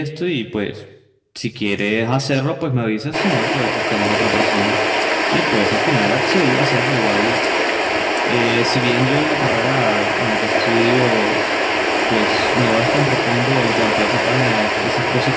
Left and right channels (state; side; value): identical; both; correlation 1.00